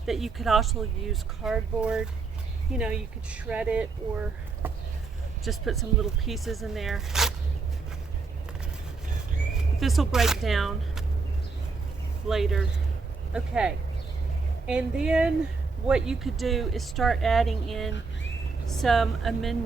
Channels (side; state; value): left; quieter; 4.4 dB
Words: that you could also use cardboard. You know, you could shred it or just put some little pieces in there. This will break down later. Okay. And then what you could do is start adding in some